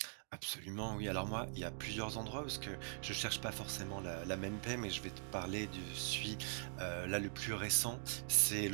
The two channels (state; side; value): silent; left; digital silence